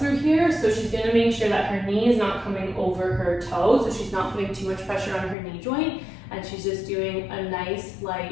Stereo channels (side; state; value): right; drops out; at 5.4 s